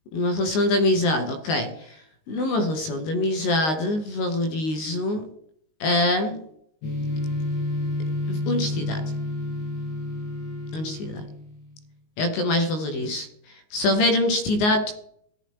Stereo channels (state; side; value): late; right; 19 ms